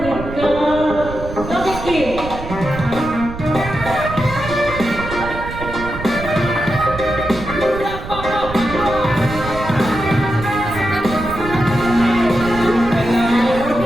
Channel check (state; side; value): noise; right; rumble, 10 dB below the sound